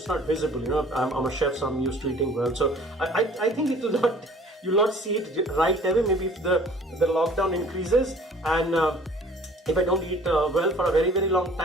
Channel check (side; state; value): both; normal; correlation 0.51